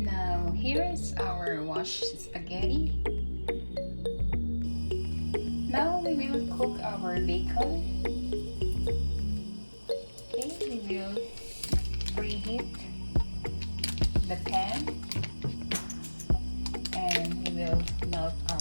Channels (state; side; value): inverted; both; correlation -1.00